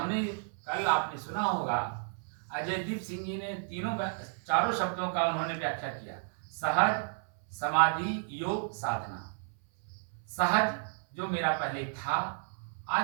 कल आपने सुना होगा, अजयदीप सिंह जी ने चारों शब्दों का उन्होंने व्याख्या किया। सहज, समाधि, योग, साधना। सहज जो मेरा पहले था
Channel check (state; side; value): silent; left; 56 dB below the other